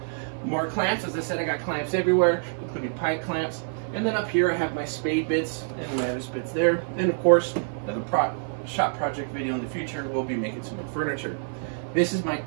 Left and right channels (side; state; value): left; silent; digital silence